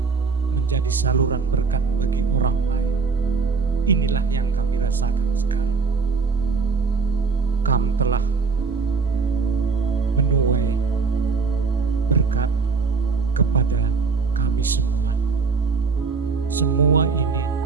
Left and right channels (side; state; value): left; quieter; 4.7 dB